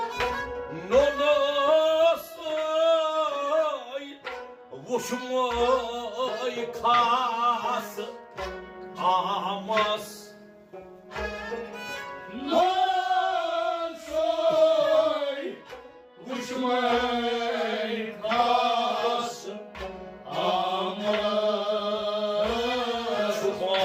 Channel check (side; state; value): both; identical; correlation 1.00